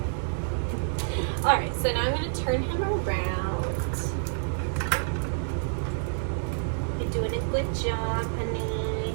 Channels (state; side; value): silent; left; 59 dB below the other